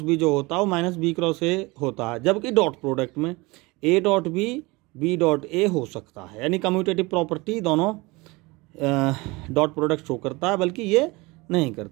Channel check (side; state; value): left; quieter; 23.9 dB